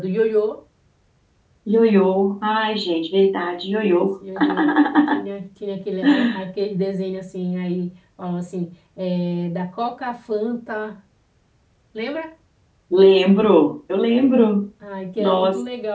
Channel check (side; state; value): both; identical; correlation 1.00